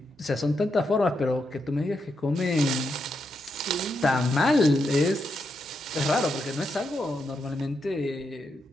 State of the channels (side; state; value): both; normal; correlation 0.83